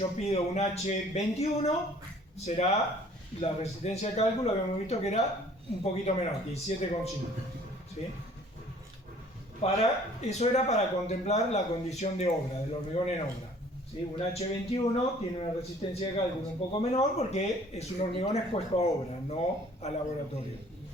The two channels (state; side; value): normal; both; correlation 0.54